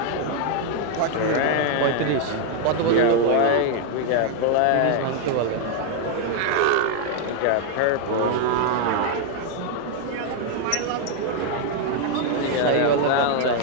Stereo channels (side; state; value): both; different; correlation 0.00